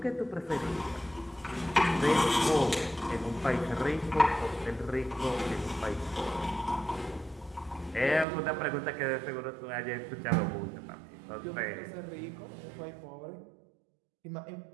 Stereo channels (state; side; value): drops out; left; at 8.2 s